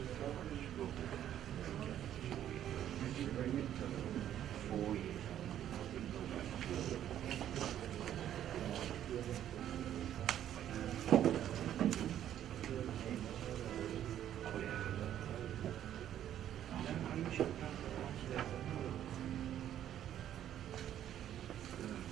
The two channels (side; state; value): left; quieter; 11.0 dB